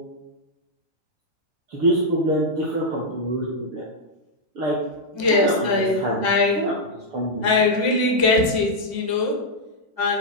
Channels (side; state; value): left; late; 6.7 ms